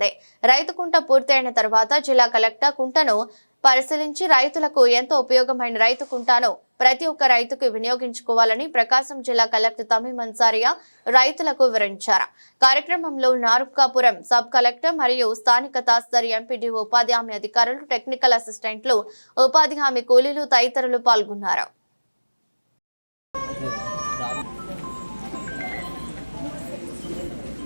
రైతు కుంట పూర్తయిన తర్వాత జిల్లా కలెక్టర్ కుంటను పరిశీలించి రైతులకు ఎంతో ఉపయోగమైన రైతు కుంటాను ప్రతి ఒక్క రైతుకు వినియోగించుకోవాలని ప్రకాశం జిల్లా కలెక్టర్ తమీమ్ అన్సారియా రైతులకు వివరించారు. కార్యక్రమంలో నార్కాపురం సబ్ కలెక్టర్ మరియు స్థానిక తహసీల్దార్, ఎంపీడీఓ, ఉపాధి హామీ అధికారులు, టెక్నికల్ అసిస్టెంట్లు, ఉపాధి హామీ కూలీలు తదితరులు పాల్గొన్నారు.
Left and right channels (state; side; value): inverted; both; correlation -1.00